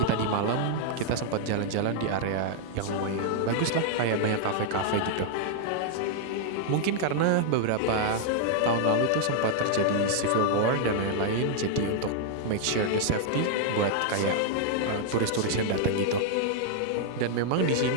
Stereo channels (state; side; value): different; both; correlation -0.01